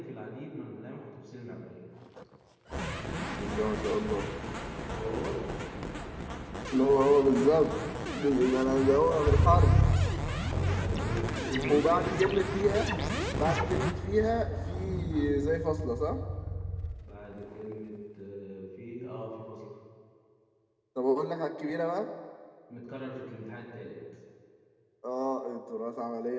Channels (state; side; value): identical; both; correlation 1.00